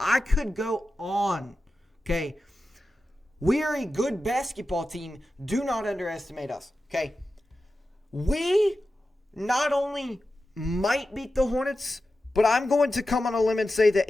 could go on. Okay. We are a good basketball team. Do not underestimate us. Okay. We not only might beat the Hornets, but I'm going to come on a limb and say that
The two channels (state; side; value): normal; both; correlation 0.92